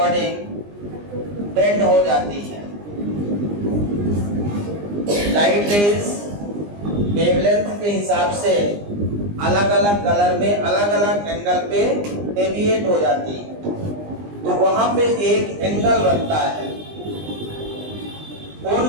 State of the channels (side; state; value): left; late; 20 ms